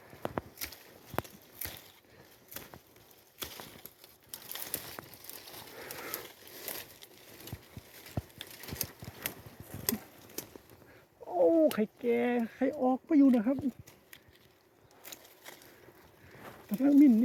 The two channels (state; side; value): identical; both; correlation 1.00